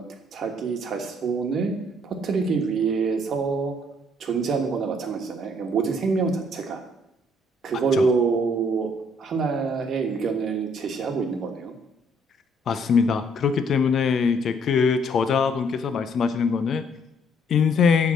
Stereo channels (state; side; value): normal; both; correlation 0.65